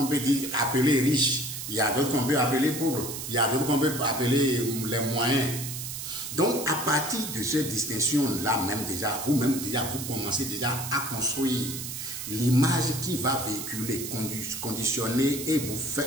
peut dire appelés riches, il y a d'autres qu'on peut appeler pauvres, il y a d'autres qu'on peut appeler les moyens. Donc à partir de cette distinction-là même déjà, vous-même déjà vous commencez déjà à construire l'image qui va véhiculer, conditionner et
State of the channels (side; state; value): right; noise; hiss, 7 dB below the sound